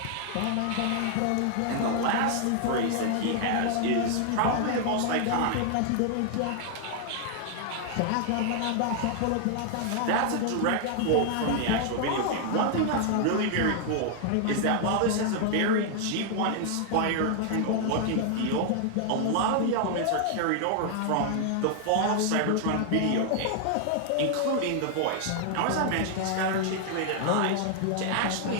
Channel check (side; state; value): both; different; correlation 0.00